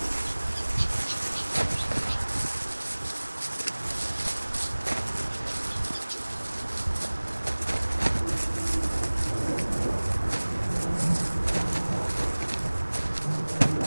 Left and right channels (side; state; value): both; inverted; correlation -1.00